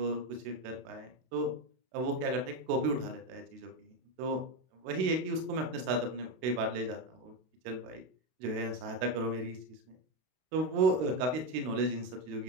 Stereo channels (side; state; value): left; late; 32 ms